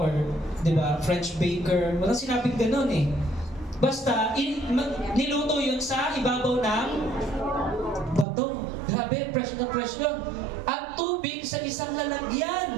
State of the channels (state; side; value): drops out; left; at 8.2 s